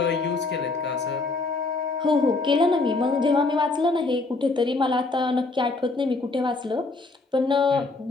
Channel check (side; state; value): right; quieter; 3.5 dB